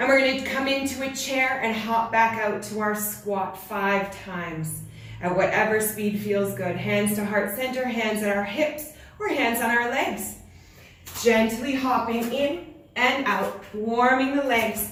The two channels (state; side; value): identical; both; correlation 1.00